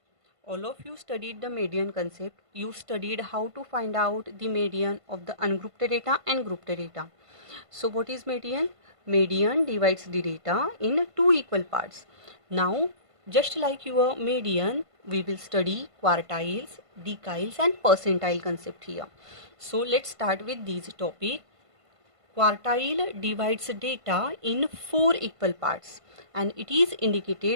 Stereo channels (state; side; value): late; left; 1.5 ms